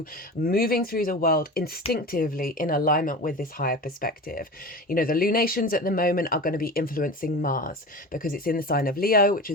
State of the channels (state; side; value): normal; both; correlation 0.31